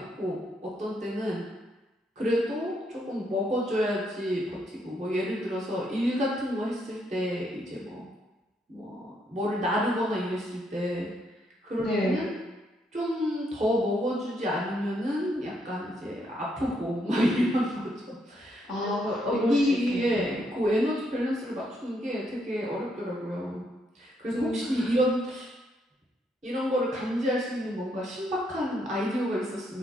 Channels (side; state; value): both; normal; correlation 0.75